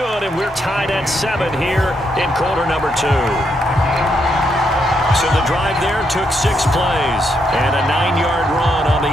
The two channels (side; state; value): both; normal; correlation 0.78